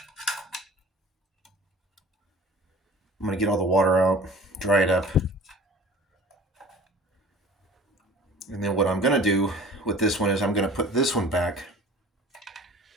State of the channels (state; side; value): normal; both; correlation 0.44